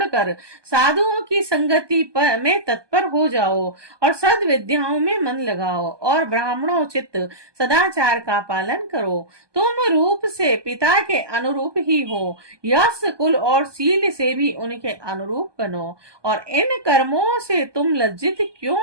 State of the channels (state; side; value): late; left; 1.2 ms